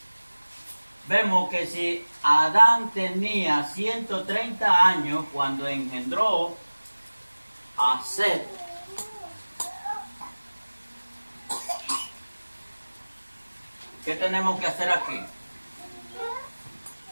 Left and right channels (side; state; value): both; inverted; correlation -1.00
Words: vemos que si Adán tenía 130 años cuando engendró a Set, ¿qué tenemos que hacer aquí?